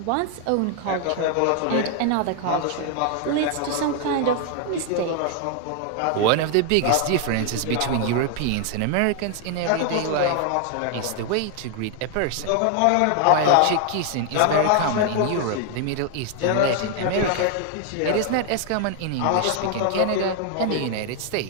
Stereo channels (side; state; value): both; different; correlation 0.00